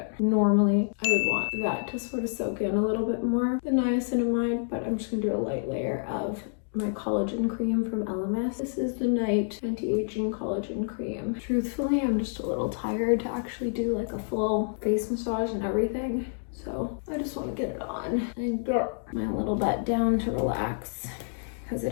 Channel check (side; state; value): right; silent; digital silence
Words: Normally, I would want that to sort of soak in a little bit more, the niacinamide, but I'm just gonna do a light layer of my collagen cream from LMS. This is the Night Anti-Aging Collagen Cream. Truthfully, I'm just a little tired to actually do like a full face massage and everything. So I just want to get it on and get my little butt down to relax because it